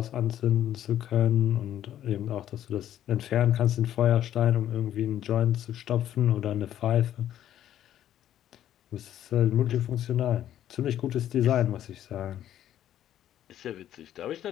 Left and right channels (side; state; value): right; quieter; 11.5 dB